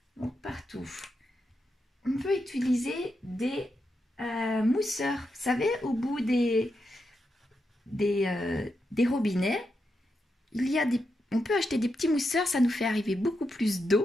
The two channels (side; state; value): both; normal; correlation 0.85